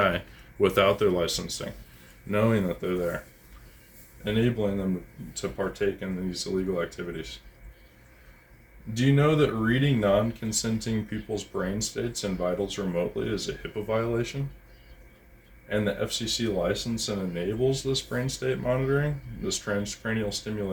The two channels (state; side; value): identical; both; correlation 1.00